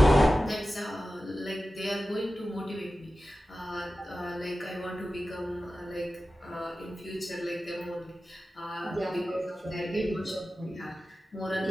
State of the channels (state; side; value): normal; both; correlation 0.95